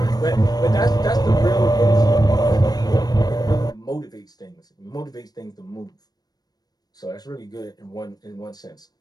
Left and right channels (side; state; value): right; late; 0.19 ms